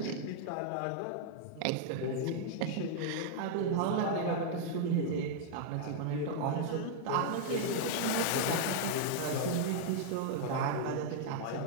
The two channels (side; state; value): both; different; correlation -0.01